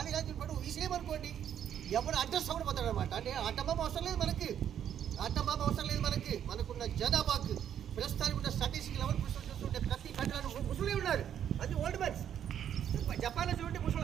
రాజు పడు విషయమనుకోండి, ఎవరు అడ్రస్ అవ్వడం పోతాడు అనమాట. అంటే ఆటంబాబు అవసరం లేదు మనకి, ఆటంబాబు అవసరం లేదు మనకి. మనకున్న జనాభాకు ప్రస్తుతానికి ఉన్న స్టాటిస్టిక్ లెవెల్ చూస్తుంటే ప్రతి కంట్రీలో ముసలి ఉన్నారు. అది ఓల్డ్ మ్యాన్స్. జపాన్లో చూడండి ముసలు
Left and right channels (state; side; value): quieter; left; 9.6 dB